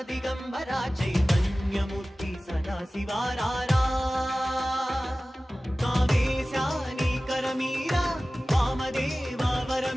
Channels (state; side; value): normal; both; correlation 0.97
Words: दिगंबरा चैतन्यमूर्ति सदाशिवारारा कामेशानी करमीरा वामदेवा